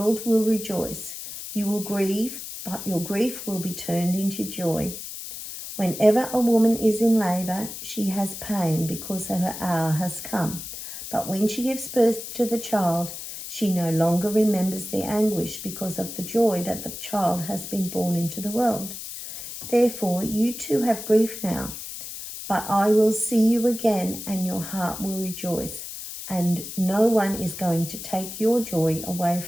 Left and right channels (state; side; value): noise; left; hiss, 9 dB below the sound